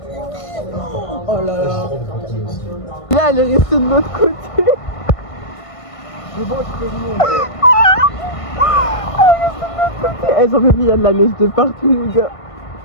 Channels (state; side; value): late; right; 1.5 ms